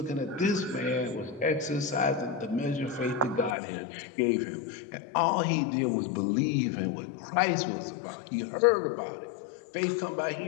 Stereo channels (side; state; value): right; drops out; at 3.6 s